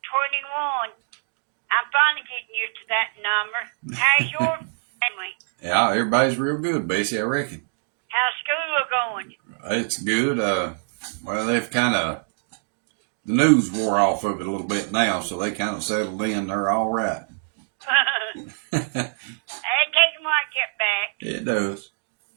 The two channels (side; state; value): left; silent; digital silence